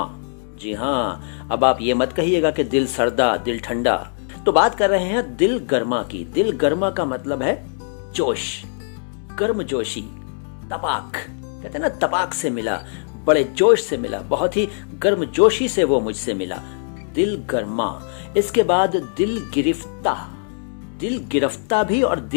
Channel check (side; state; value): right; silent; 65 dB below the other